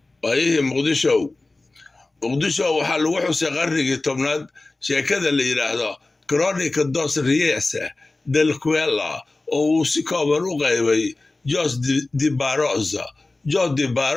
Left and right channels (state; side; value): quieter; right; 3.2 dB